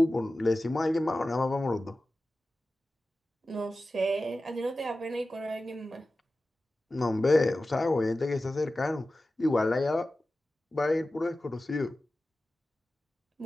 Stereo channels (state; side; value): normal; both; correlation 0.95